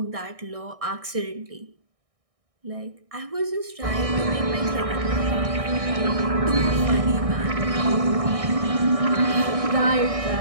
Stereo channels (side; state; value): left; late; 1.6 ms